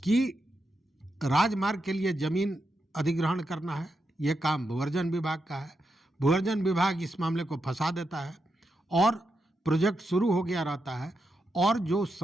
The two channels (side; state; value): both; normal; correlation 0.85